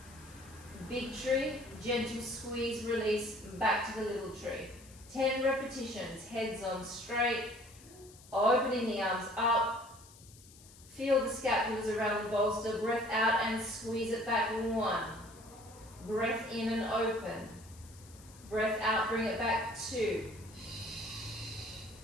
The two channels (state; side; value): noise; left; hiss, 22 dB below the sound